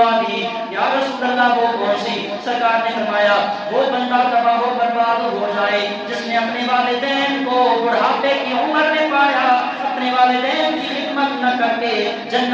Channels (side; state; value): both; identical; correlation 1.00